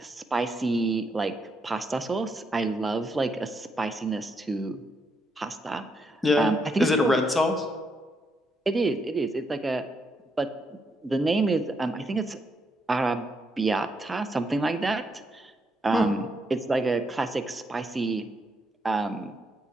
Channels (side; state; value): both; normal; correlation 0.78